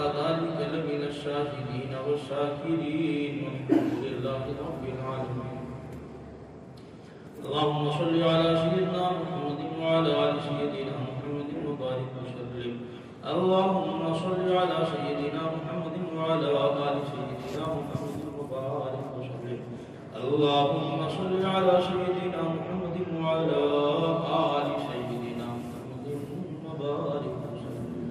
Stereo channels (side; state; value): both; identical; correlation 1.00